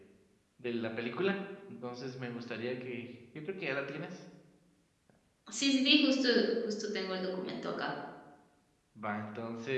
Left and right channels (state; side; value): identical; both; correlation 1.00